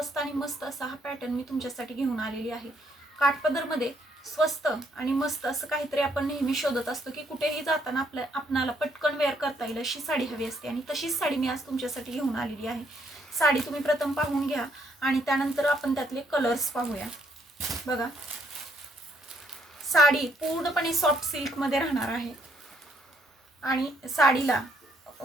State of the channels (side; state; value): both; normal; correlation 0.71